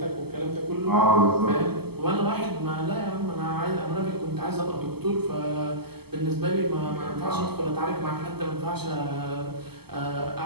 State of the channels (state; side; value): late; left; 0.96 ms